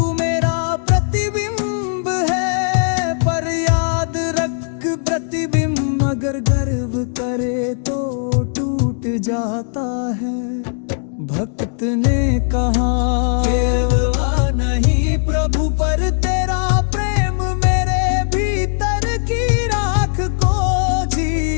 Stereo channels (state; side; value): silent; right; digital silence